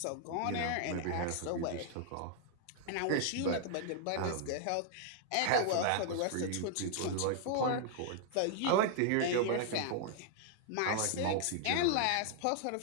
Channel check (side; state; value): both; different; correlation 0.00